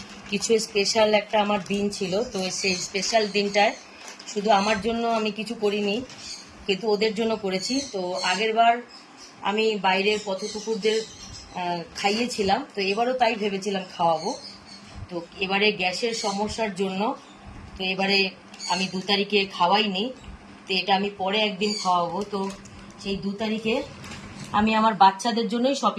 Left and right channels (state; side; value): identical; both; correlation 1.00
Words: কিছু স্পেশাল একটা আমার দিন ছিল, তো সেই স্পেশাল দিনটায় শুধু আমার জন্য আমি কিছু করিনি, কিন্তু ওদের জন্য করেছি। তো আগের বার আমি বাইরের পথকুকুরদের খাইয়েছিলাম, তো এবারও তাই ভেবেছিলাম খাওয়াবো। তো এবারে গ্যাসের সমস্যার জন্য তো এবারে আমি 2 তারিখে খাওয়াইনি, তো এটা আমি পরে একদিন খাওয়াবো। তো সেই 2 তারিখে আমি আমার বাচ্চাদের জন্যই